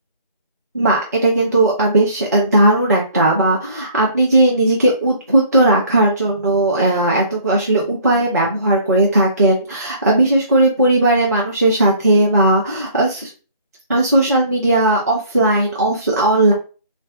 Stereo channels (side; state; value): both; inverted; correlation -0.52